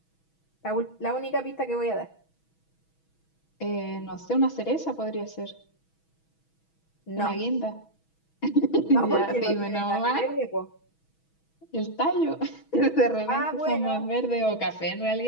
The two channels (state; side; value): late; right; 6.2 ms